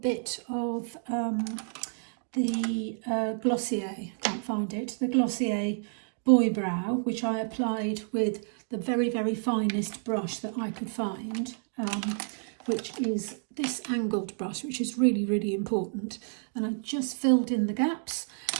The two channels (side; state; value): left; silent; digital silence